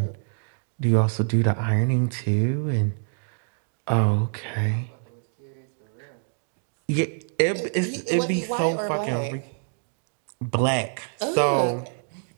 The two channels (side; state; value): left; silent; digital silence